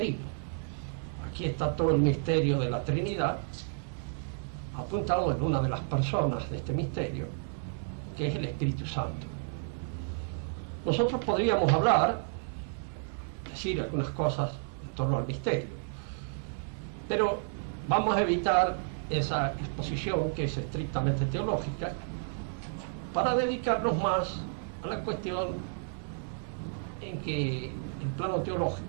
Aquí está todo el misterio de la Trinidad apuntado en una de las personas de este misterio, que es el Espíritu Santo. Nosotros podríamos hablar, decir algunas cosas en torno al misterio, pero vamos a evitar esa exposición que es estrictamente teológica para dedicarnos más a la cuestión en que el plano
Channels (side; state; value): left; silent; digital silence